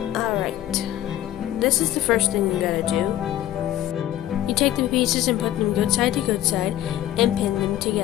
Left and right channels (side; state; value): right; quieter; 13.0 dB